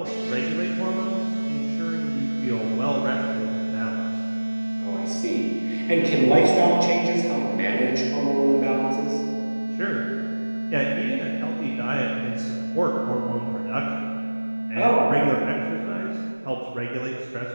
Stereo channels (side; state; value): both; inverted; correlation -1.00